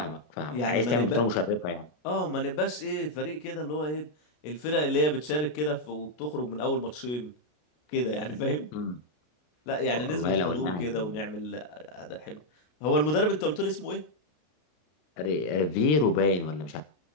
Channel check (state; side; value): late; right; 33 ms